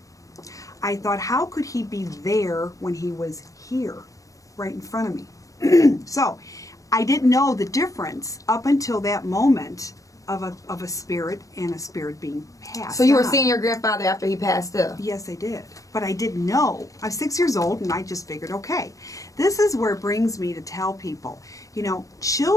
I thought, how could he be there when he was here, right in front of me? So I didn't know the difference up until that moment of a spirit and a spirit being passed. So you were on. seeing your grandfather after he passed up? Yes, I did. But I didn't know. I was 6 years old, and I just figured, okay, this is where it brings me to tell people, you know,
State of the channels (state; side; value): late; right; 0.16 ms